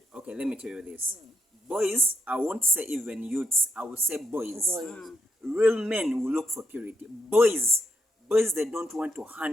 Okay, let me tell you this. Boys, I won't say even youths, I will say boys. Real men will look for purity. Boys, they don't want to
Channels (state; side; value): normal; both; correlation 0.78